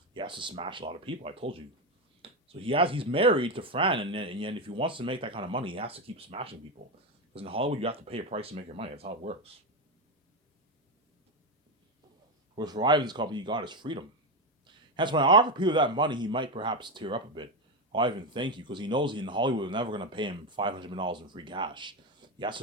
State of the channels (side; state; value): both; normal; correlation 0.11